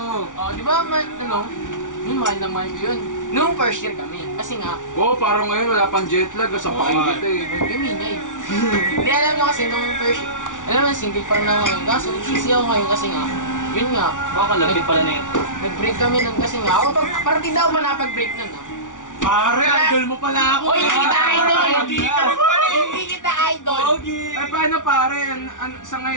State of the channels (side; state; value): right; late; 0.87 ms